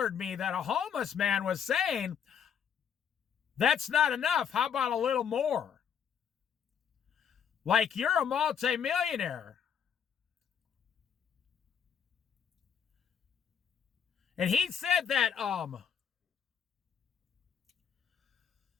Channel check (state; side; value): quieter; right; 7.9 dB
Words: me that a homeless man was saying, that's not enough. How about a little more? Like you're a multimillionaire. And he said that,